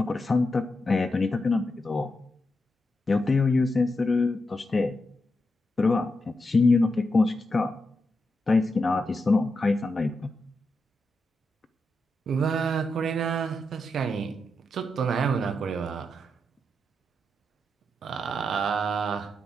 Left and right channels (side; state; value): both; normal; correlation 0.86